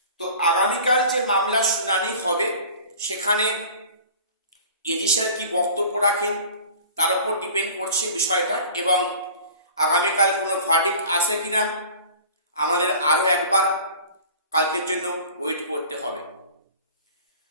তো আগামীকাল যে মামলা শুনানি হবে, সেখানে এডি স্যার কি বক্তব্য রাখেন তার উপর ডিপেন্ড করছে বিষয়টা। এবং আগামীকাল কোনো ভার্ডিক্ট আসে কিনা আমাদের আরো একবার কালকের জন্য ওয়েট করতে হবে।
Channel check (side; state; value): both; inverted; correlation -0.42